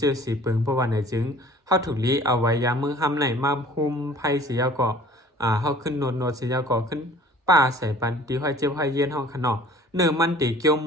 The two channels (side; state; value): both; normal; correlation 0.49